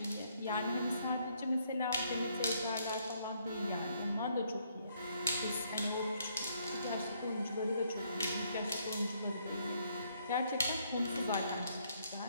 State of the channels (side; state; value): both; inverted; correlation -0.70